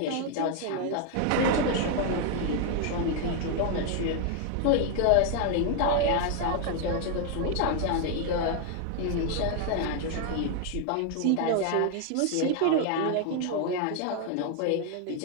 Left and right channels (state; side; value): different; both; correlation 0.00